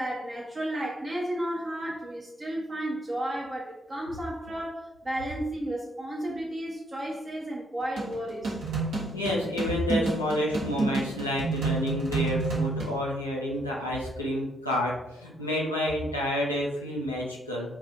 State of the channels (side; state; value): both; normal; correlation 0.68